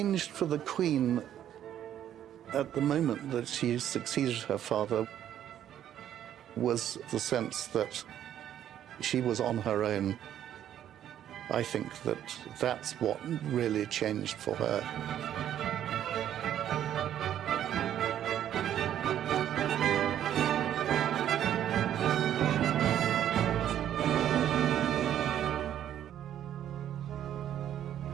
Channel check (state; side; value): quieter; left; 10.8 dB